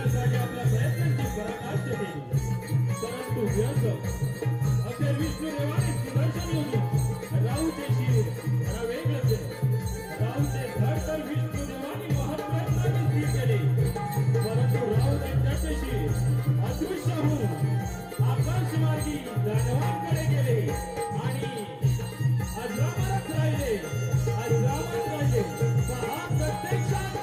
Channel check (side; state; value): both; identical; correlation 1.00